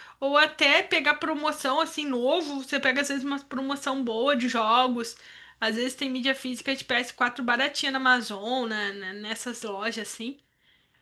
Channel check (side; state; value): both; identical; correlation 1.00